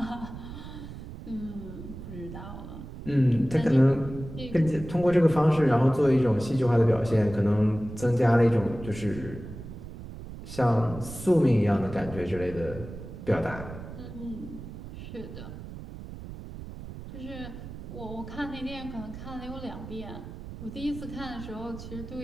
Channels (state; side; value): noise; right; rumble, 12 dB below the sound